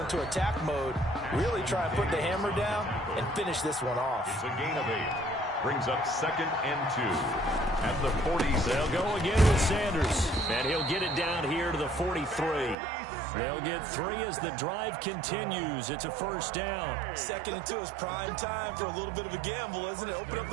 attack mode, really try and put the hammer down and finish this one off. It's a gain of 8. Brings up 2nd and 2 at the 40. They'll go again with Sanders, and he'll get it down here to the 43. They'll get 3 as the drive continues. It's a first down. 2nd and 2 is prime time for a little bit of a gamble, isn't it? Open up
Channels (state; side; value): drops out; left; at 12.8 s